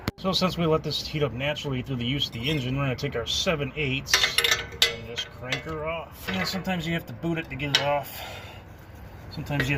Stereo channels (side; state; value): both; identical; correlation 1.00